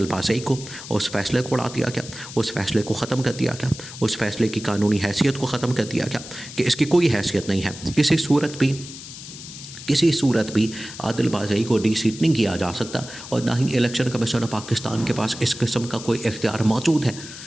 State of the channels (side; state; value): left; noise; hiss, 13 dB below the sound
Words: بازئی کو، اس فیصلے کو اڑا دیا گیا، اس فیصلے کو ختم کر دیا گیا، اس فیصلے کی قانونی حیثیت کو ختم کر دیا گیا کہ اس کی کوئی حیثیت نہیں ہے، کسی صورت بھی عادل بازئی کو ڈی سیٹ نہیں کیا جا سکتا، اور نہ ہی الیکشن کمیشن آف پاکستان کے پاس اس قسم کا کوئی اختیار موجود ہے